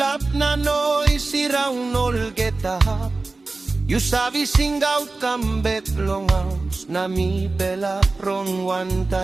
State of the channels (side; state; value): left; quieter; 3.5 dB